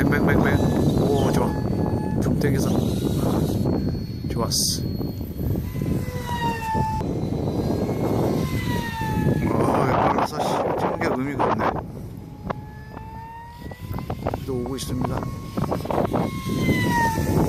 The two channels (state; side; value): identical; both; correlation 1.00